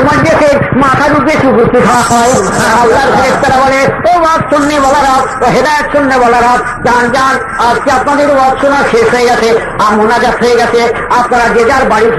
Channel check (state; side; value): identical; both; correlation 1.00